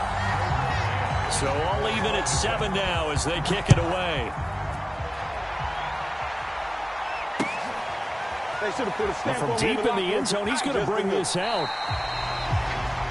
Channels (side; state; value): both; identical; correlation 1.00